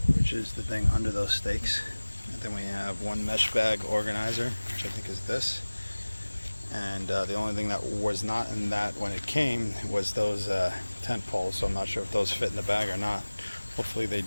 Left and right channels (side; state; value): both; inverted; correlation -1.00